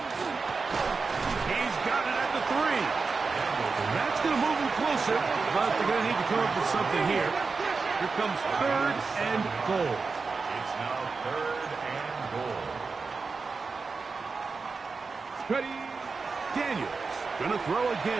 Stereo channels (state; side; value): quieter; left; 4.5 dB